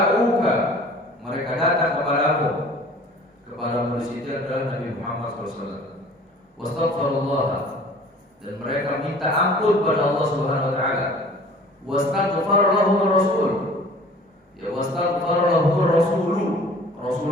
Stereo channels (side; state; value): both; normal; correlation 0.48